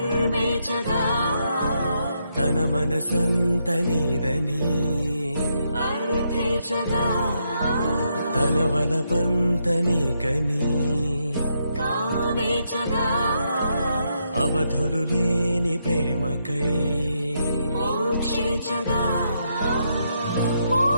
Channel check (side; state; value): both; inverted; correlation -0.79